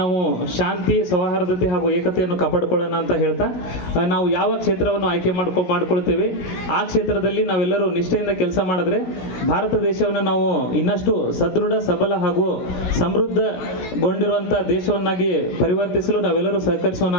ಶಾಂತಿ, ಸೌಹಾರ್ದತೆ ಹಾಗೂ ಏಕತೆಯನ್ನು ಕಾಪಾಡಿಕೊಳ್ಳೋಣ ಅಂತ ಹೇಳ್ತಾ, ನಾವು ಯಾವ ಕ್ಷೇತ್ರವನ್ನು ಆಯ್ಕೆ ಮಾಡ್ಕೊಳ್ತೇವೆ ಆ ಕ್ಷೇತ್ರದಲ್ಲಿ ನಾವೆಲ್ಲರೂ ನಿಷ್ಠೆಯಿಂದ ಕೆಲಸ ಮಾಡಿದ್ರೆ ಭಾರತ ದೇಶವನ್ನು ನಾವು ಇನ್ನಷ್ಟು ಸದೃಢ, ಸಬಲ ಹಾಗೂ ಸಮೃದ್ಧಗೊಂಡಿರುವಂಥ ದೇಶವನ್ನಾಗಿ ಪರಿವರ್ತಿಸಲು ನಾವೆಲ್ಲರೂ ಸಹಕರಿಸೋಣ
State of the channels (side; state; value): right; late; 16 ms